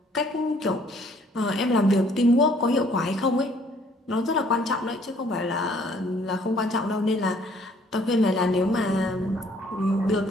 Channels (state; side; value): normal; both; correlation 0.61